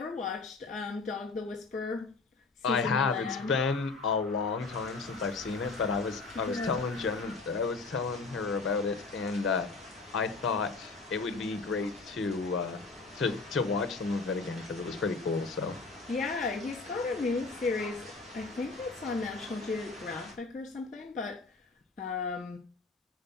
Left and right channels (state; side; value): quieter; right; 4.1 dB